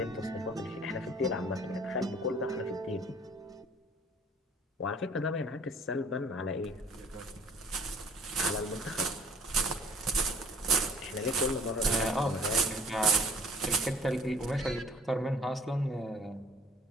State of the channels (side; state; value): both; normal; correlation 0.53